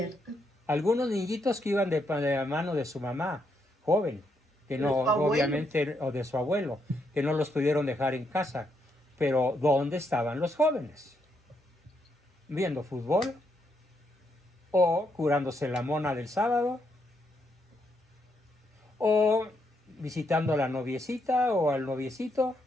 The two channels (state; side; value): normal; both; correlation 0.78